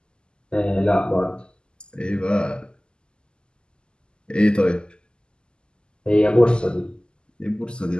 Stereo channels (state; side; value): late; right; 0.048 ms